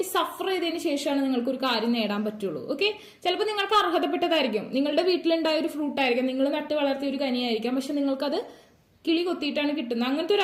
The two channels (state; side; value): identical; both; correlation 1.00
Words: സഫർ ചെയ്തതിന് ശേഷമാണ് നിങ്ങൾക്ക് ഒരു കാര്യം നേടാൻ പറ്റുള്ളൂ. ഓക്കെ, ചിലപ്പോൾ നിങ്ങൾക്ക് അർഹതപ്പെട്ടതായിരിക്കും, നിങ്ങളുടെ വീട്ടിലുണ്ടായ ഒരു ഫ്രൂട്ട് ആയിരിക്കാം, നിങ്ങൾ നട്ട് വളർത്തിയ ഒരു കനിയായിരിക്കാം, പക്ഷെ നിങ്ങൾക്കത് കിളി കൊത്തിയിട്ടാണ് കിട്ടുന്നത്. അങ്ങനത്തെ ഒരു